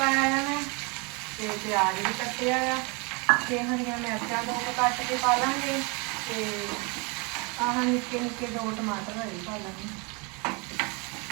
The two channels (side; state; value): left; quieter; 30.5 dB